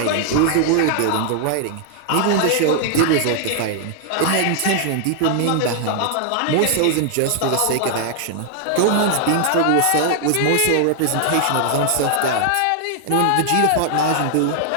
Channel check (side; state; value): both; different; correlation 0.00